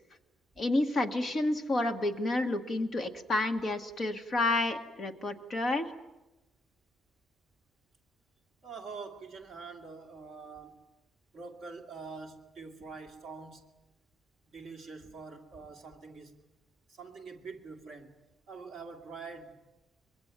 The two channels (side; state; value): both; normal; correlation 0.77